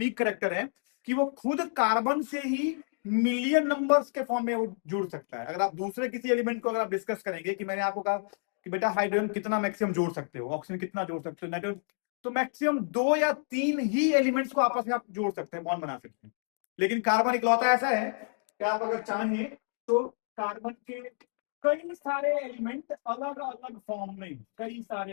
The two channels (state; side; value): silent; right; 58 dB below the other